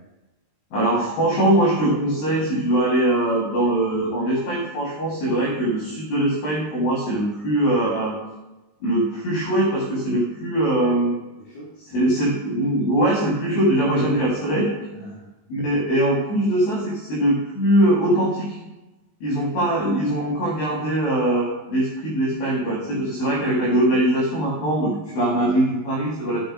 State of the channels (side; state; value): right; late; 20 ms